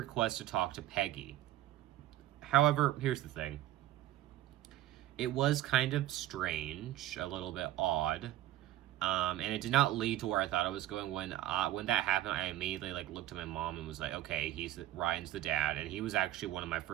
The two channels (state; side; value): quieter; left; 14.1 dB